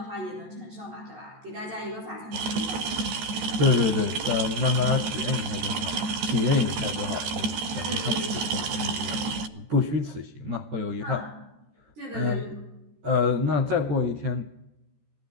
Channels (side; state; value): left; late; 14 ms